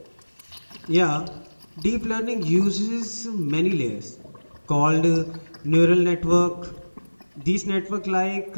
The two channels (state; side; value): inverted; both; correlation -1.00